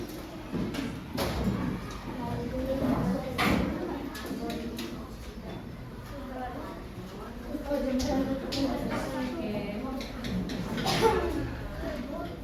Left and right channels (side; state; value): both; identical; correlation 1.00